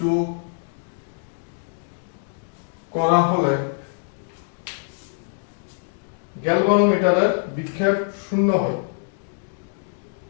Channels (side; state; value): right; silent; digital silence